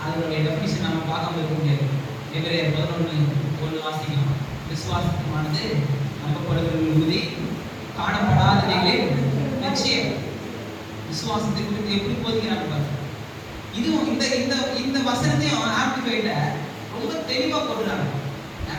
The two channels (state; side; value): identical; both; correlation 1.00